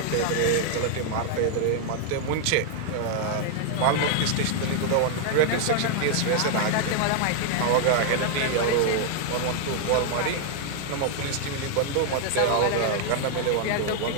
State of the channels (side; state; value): both; different; correlation 0.00